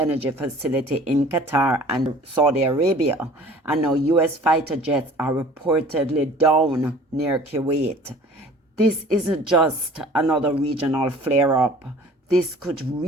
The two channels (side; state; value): both; normal; correlation 0.48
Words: facility in Qatar and Saudi Arabia. And now US fighter jets are reportedly down near Kuwait. This isn't just another regional flare-up. This could